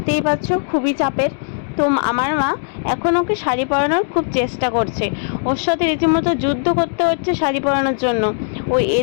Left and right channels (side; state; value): right; silent; digital silence